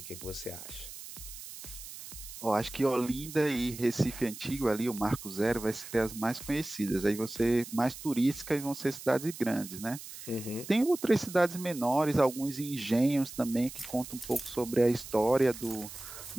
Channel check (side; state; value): right; noise; hiss, 13 dB below the sound